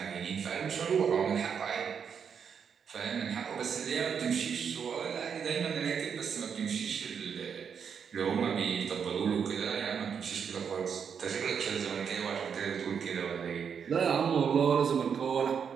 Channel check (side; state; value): left; quieter; 7.0 dB